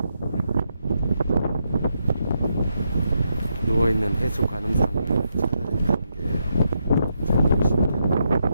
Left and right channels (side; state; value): both; inverted; correlation -0.81